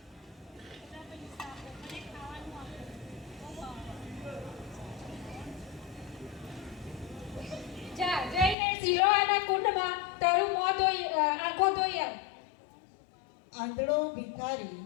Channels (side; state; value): right; drops out; at 8.6 s